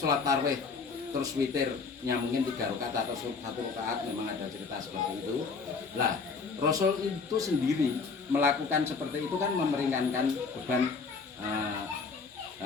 tarawih terus witirnya mungkin 3 rakaat atau 1 rakaat, memang ada cerita seperti itu. Lah, Rasul itu sendiri melakukan seperti itu kan memperingankan beban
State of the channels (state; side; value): quieter; right; 4.8 dB